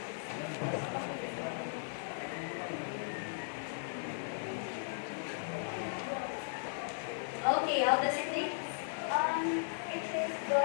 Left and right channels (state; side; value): silent; right; 53 dB below the other